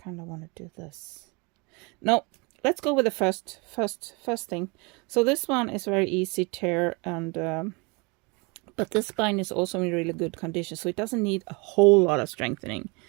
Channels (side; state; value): left; quieter; 29.2 dB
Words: kind of want to do this. No, let's go with the first thing. So this one is very easy tear, and but this spine is also in really good condition, so it doesn't need a whole lot of strengthening.